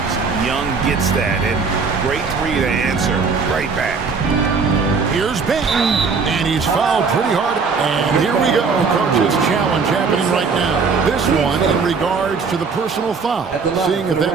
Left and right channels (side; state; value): left; quieter; 5.0 dB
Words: Young gets that, and great 3 to answer right back. Here's Benton, and he's fouled pretty hard. And here we go, coach's challenge happening right now. This one in regards to the personal foul, seeing if